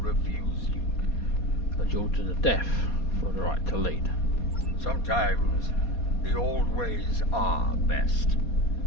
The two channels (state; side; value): late; right; 4.2 ms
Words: you. A duel to the death for the right to lead. Sometimes the old ways are best.